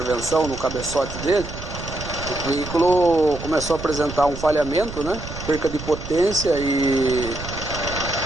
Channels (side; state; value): right; noise; rumble, 10 dB below the sound